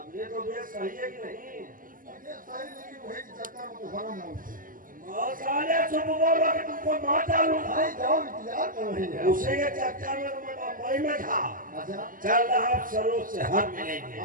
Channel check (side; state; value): left; late; 0.40 ms